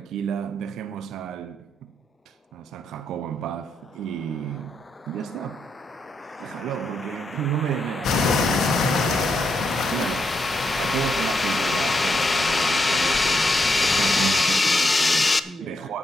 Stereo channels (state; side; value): normal; both; correlation 0.80